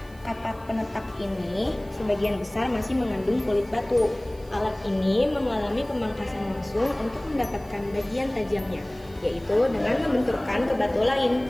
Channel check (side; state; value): right; noise; hiss, 26 dB below the sound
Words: Kapak penetak ini sebagian besar masih mengandung kulit batu. Alat ini mengalami pemangkasan langsung untuk mendapatkan bagian tajamnya, yaitu dengan membenturkan ke batu